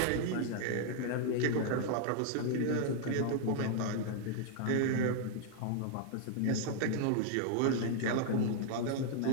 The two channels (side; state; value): both; different; correlation 0.00